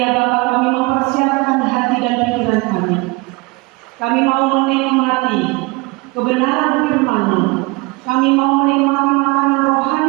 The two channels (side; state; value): left; quieter; 25.3 dB